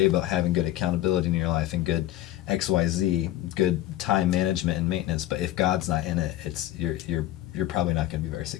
about having good accountability in your life and good XYZ, good time management and maintenance. But if God's not in it, you're probably not going to be very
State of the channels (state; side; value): quieter; right; 14.3 dB